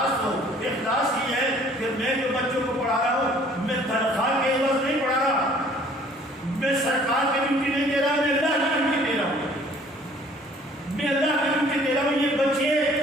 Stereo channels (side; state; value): both; normal; correlation 0.55